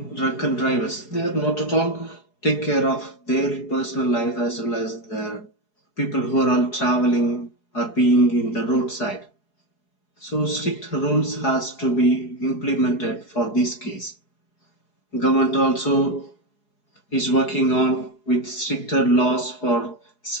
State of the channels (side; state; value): right; late; 4.8 ms